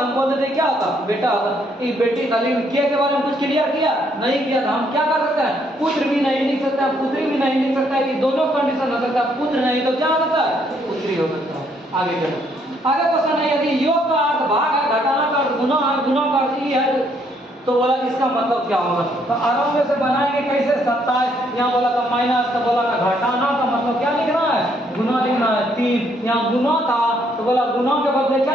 बोल देते क्या होता बेटा होता, ये बेटी था, लेकिन के बारे में कुछ क्लियर किया नहीं किया था। हम क्या कर सकते हैं पुत्र भी नहीं लिख सकते सकते हैं, पुत्री भी नहीं लिख सकता है, कि दोनों कंडीशन हो सकता है, पुत्र नहीं तो क्या हो सकता है, पुत्री हो सकता है। आगे चलो, आगे क्वेश्चन है, यदि योग का अर्थ भाग है, घटाना का अर्थ गुना है, गुना का अर्थ ये है, तो बोला इसका मतलब क्या होगा। तो आराम में से बनाएंगे कैसे, 27 यहाँ बोला था माइनस, तो बोला था घटाना का मतलब क्या लिखना है, गुना लिखना है। 3 यहाँ गुना था, तो बोला गुना के बदले क्या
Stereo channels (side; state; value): both; normal; correlation 0.70